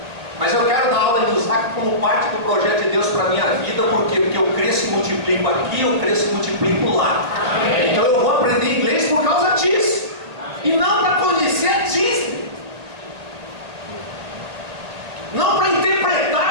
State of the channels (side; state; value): left; late; 1.9 ms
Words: Mas eu quero dar aula em Lusaka como parte do projeto de Deus para a minha vida. Por quê? Porque eu cresço e multiplico aqui, eu cresço e multiplico lá. Então eu vou aprender inglês por causa disso. E não para conhecer a Disney. Não para